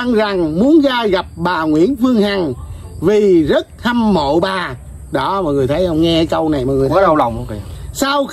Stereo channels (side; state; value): both; identical; correlation 1.00